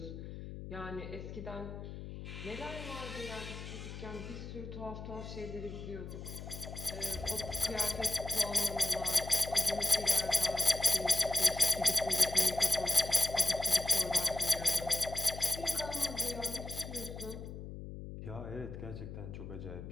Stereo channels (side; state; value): left; noise; hum, 10 dB below the sound